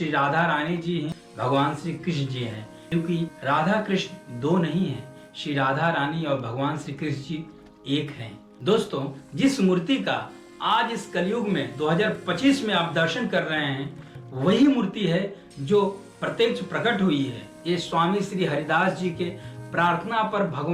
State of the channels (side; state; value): both; identical; correlation 1.00